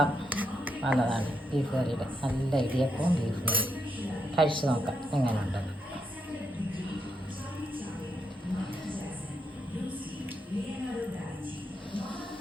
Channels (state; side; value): normal; both; correlation 0.80